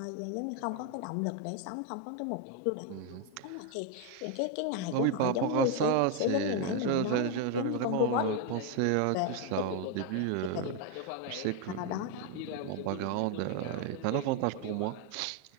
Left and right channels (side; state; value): both; different; correlation 0.01